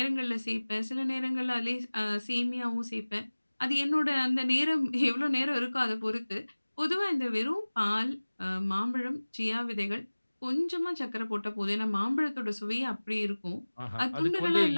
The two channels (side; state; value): both; inverted; correlation -1.00